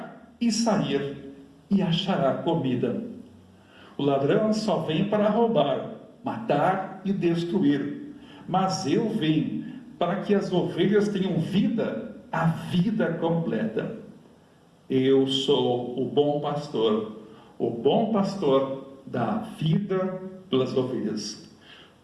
e sair e achará comida. O ladrão só vem para roubar, matar e destruir. Mas eu vim para que as ovelhas tenham vida, a vida completa. Eu sou o bom pastor dá vida pelas ovelhas.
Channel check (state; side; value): identical; both; correlation 1.00